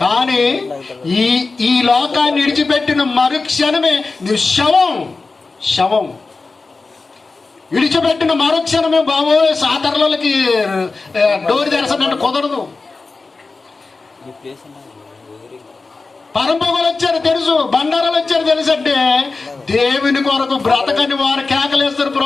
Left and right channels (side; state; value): right; quieter; 3.9 dB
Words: కానీ ఈ లోకాన్ని విడిచిపెట్టిన మరుక్షణమే నువ్వు శవం విడిచిపెట్టిన మరుక్షణమే బాబోయ్ సాతరులకి డోర్ తెరసనంటే కుదరదు. పరంపొగలు వచ్చారు తెలుసు, బండారాలు వచ్చారు తెలుసు. అంటే దేవుని కొరకు బ్రతకని వారు కేకలేస్తారు,